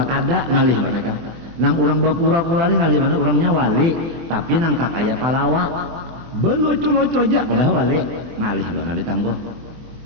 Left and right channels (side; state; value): left; late; 24 ms